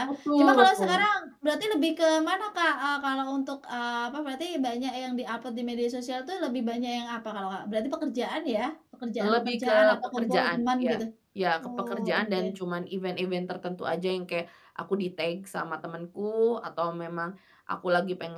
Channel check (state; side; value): identical; both; correlation 1.00